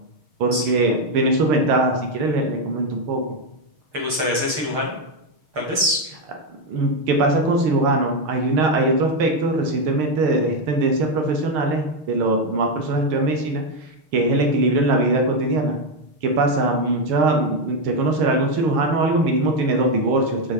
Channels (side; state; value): left; late; 6.6 ms